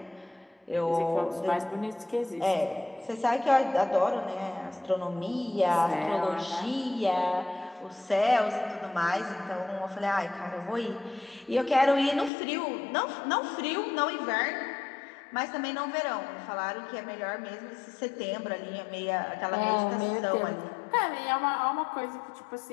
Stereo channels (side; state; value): right; drops out; at 12.3 s